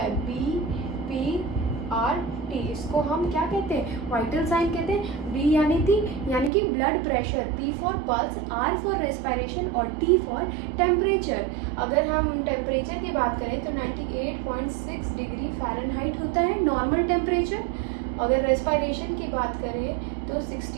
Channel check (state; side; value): drops out; left; at 6.5 s